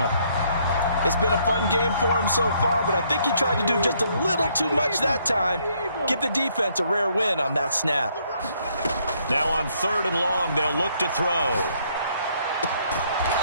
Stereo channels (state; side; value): inverted; both; correlation -0.69